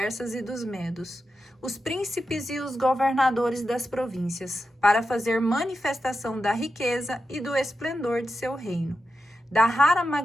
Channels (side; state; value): both; normal; correlation 0.89